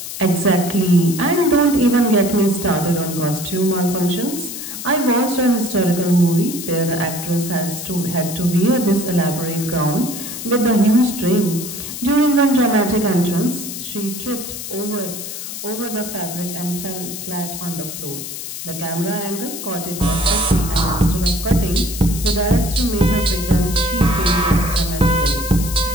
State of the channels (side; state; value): left; noise; hiss, 8 dB below the sound